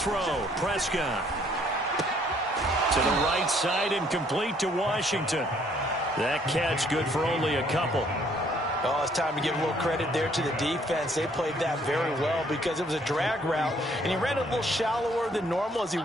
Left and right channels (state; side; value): normal; both; correlation 0.64